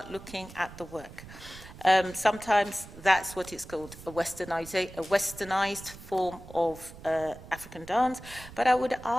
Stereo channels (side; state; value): right; noise; rumble, 16 dB below the sound